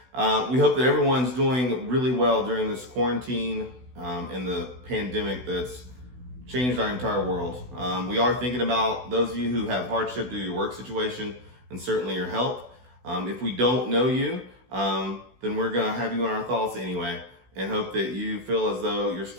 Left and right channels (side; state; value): left; late; 16 ms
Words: We hope that everyone's doing really well during this quarantine and the pandemic that's changed our entire world. We are thinking about those of you who have hardship due to your work situation and certainly your health. If we don't know you, then we're going to have you in our thoughts anyway, and hope that you feel as though you're